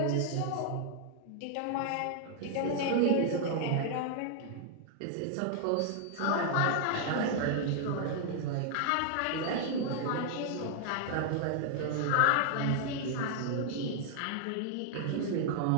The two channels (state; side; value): different; both; correlation 0.00